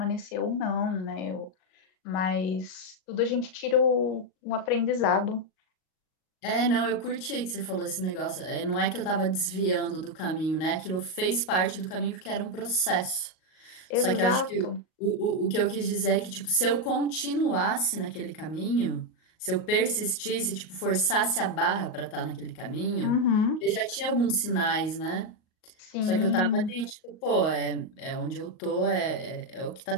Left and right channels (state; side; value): late; right; 38 ms